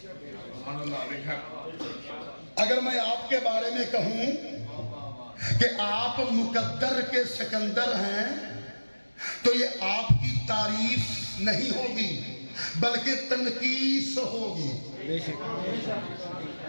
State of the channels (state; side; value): inverted; both; correlation -1.00